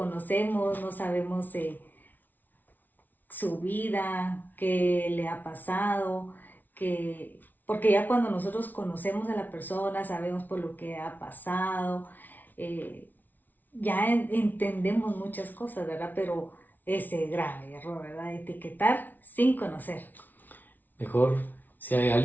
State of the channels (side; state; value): right; late; 0.083 ms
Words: no sabemos su vida, qué le ha pasado, porque ya cuando nosotros conocemos a la persona, sabemos por lo que ha pasado, ya entendemos muchas cosas, ¿verdad? Pero ese grave error, ¿verdad? Etiquetar sin conocer. Mejor, si hay